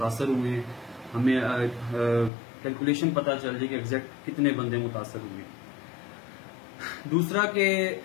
ہوئے ہیں، ہمیں کیلکولیشن پتا چل جائے کہ ایگزیکٹ کتنے بندے متاثر ہوئے ہیں۔ دوسرا کہ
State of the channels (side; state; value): right; drops out; at 2.3 s